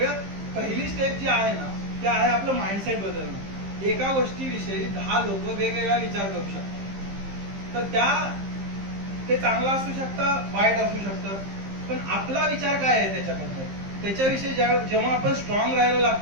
पहिली स्टेप जी आहे ना ती आहे आपलं माइंडसेट बदलणं. एका गोष्टीविषयी 10 लोक वेगवेगळा विचार करू शकतात, तर ते चांगलं असू शकतं, वाईट असू शकतं, पण आपला विचार काय आहे त्याच्याबद्दल, त्याच्याविषयी जेव्हा आपण स्ट्रॉंग राहायला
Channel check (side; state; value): left; late; 15 ms